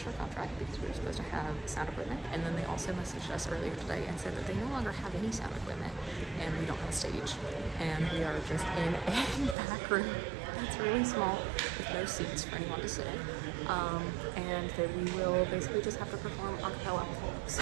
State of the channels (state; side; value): drops out; left; at 9.6 s